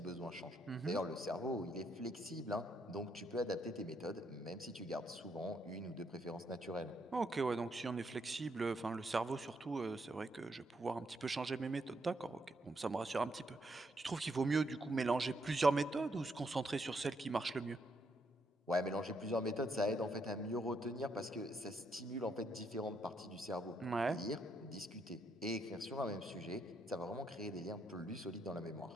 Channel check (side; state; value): both; normal; correlation 0.75